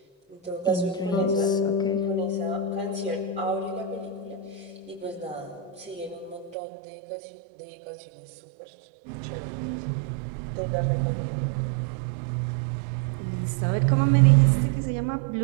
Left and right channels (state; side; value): drops out; left; at 6.6 s